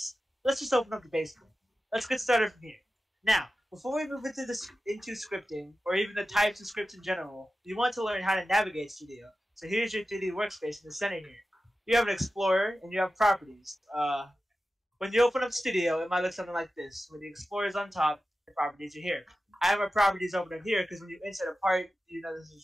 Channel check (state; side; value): normal; both; correlation 0.93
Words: Let's just open up the basic. Let's get started from here. Now, before we move into scripting, or even the types of scripts in general, you want to learn how to navigate Studio. So here's your 3D workspace in the center here. You have an Explorer, and you have properties. When you open up Studio, it might look something like this. When the Explorer is on top, the properties are here. I have my properties open up here because when you insert a part, you know